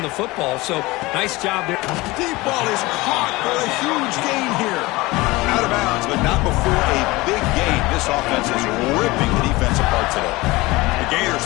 the football. So, nice job there. Deep ball is caught for a huge gain here. Out of bounds, but not before a big gain. This offense is ripping the defense apart today. The Gators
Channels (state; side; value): quieter; right; 21.3 dB